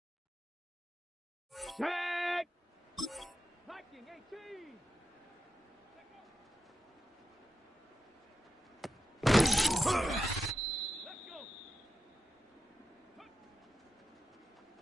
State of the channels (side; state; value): both; normal; correlation 0.89